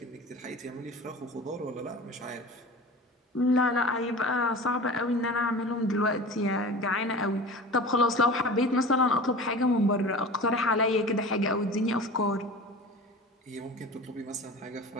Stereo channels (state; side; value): normal; both; correlation 0.35